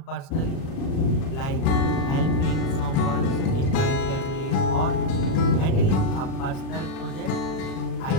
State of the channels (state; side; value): late; right; 37 ms